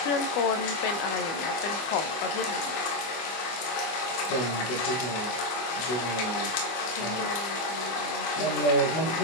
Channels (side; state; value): right; late; 24 ms